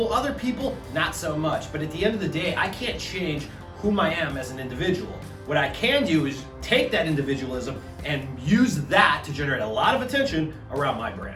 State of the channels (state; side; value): identical; both; correlation 1.00